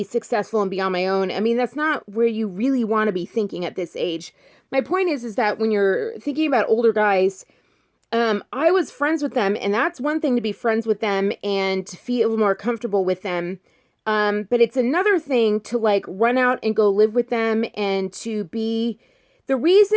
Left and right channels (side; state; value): both; identical; correlation 1.00